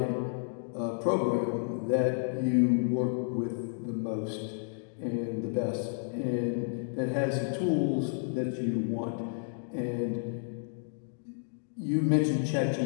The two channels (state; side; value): silent; right; digital silence